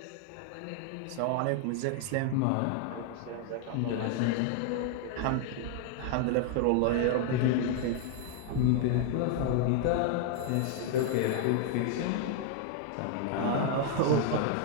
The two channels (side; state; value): both; different; correlation 0.00